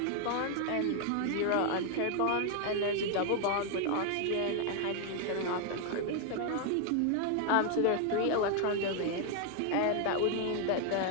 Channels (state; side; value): different; both; correlation 0.00